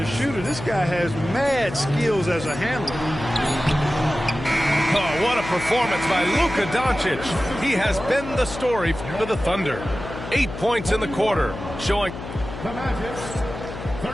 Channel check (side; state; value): left; noise; hum, 10 dB below the sound